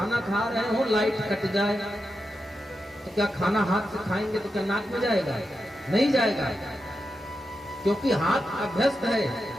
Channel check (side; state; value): both; normal; correlation 0.88